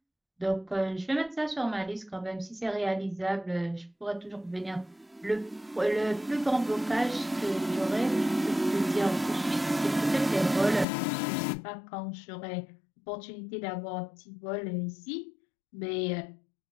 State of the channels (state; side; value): drops out; right; at 10.9 s